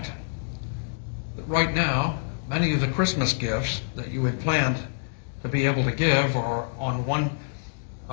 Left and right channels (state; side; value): silent; right; digital silence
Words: that right now, many of the Christmas gifts that you had planned to be able to give are on one